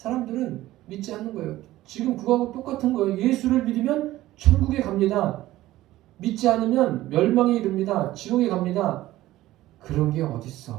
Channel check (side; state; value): left; quieter; 15.8 dB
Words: 믿지 않는 거예요. 지금 그거하고 똑같은 거예요. 예수를 믿으면 천국에 갑니다. 믿지 않으면 멸망에 이릅니다. 지옥에 갑니다. 그런 게